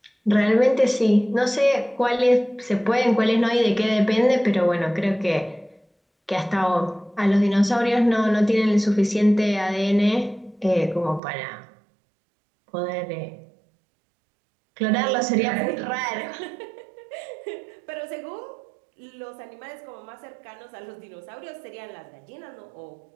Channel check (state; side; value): drops out; left; at 11.2 s